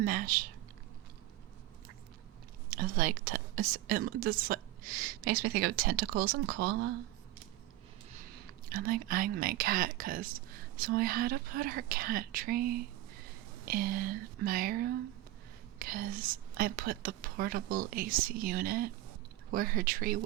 It's like, this like, makes me think of tentacles and cola. I'm like eyeing my cat because so I had to put her cat tree in my room because I put the portable AC unit where her tree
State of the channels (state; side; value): quieter; left; 15.7 dB